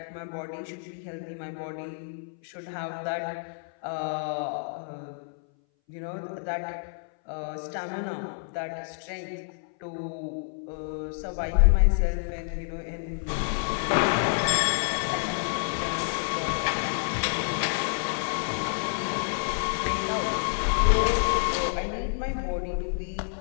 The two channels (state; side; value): silent; right; 59 dB below the other